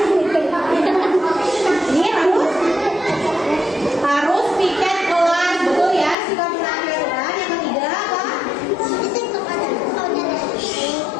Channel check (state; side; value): drops out; right; at 6.2 s